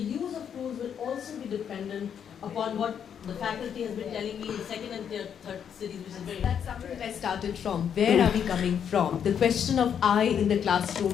of tools will also be dependent upon what the faculty has been telling me in the second and third cities, which is very... That's something that I started from. Where are we coming from? The question of I in the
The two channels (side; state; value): right; quieter; 8.2 dB